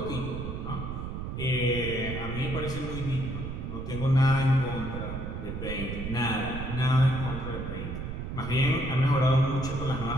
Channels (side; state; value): right; noise; rumble, 5 dB below the sound